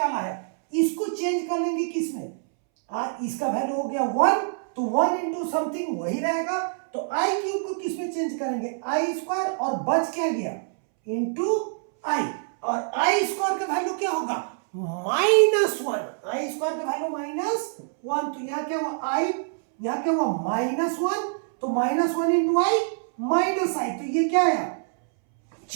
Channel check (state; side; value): silent; left; 61 dB below the other